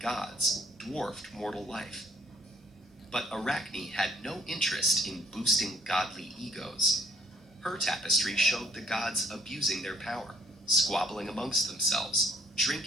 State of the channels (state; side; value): normal; both; correlation 0.63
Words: gods dwarfed mortal life. But Arachne had no interest in boosting godly egos. Her tapestry showed the gods abusing their power, squabbling amongst themselves,